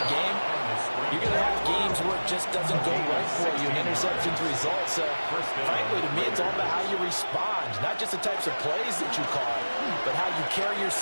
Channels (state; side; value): inverted; both; correlation -1.00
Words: game, you're going to have games where it just doesn't go right for you, and interceptions result. So, frankly, to me, it's all about how you respond, not just the types of plays that you call, but how you carry